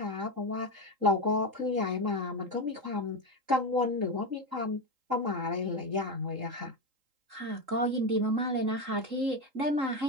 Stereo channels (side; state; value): left; late; 3.8 ms